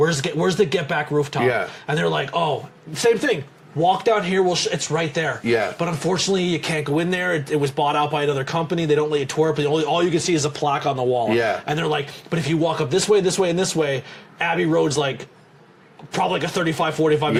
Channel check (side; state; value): both; identical; correlation 1.00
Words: the Get Back rooftop? Yeah. And they're like, oh, same thing. Walk down here, it's right there. Yeah. But unfortunately, you can't go in there. It was bought out by another company. They don't let you tour it, but all you can see is a plaque on the wall. Yeah. And they're like, but if you walk up this way, and this way, Abbey Road's like, probably like a 35, 45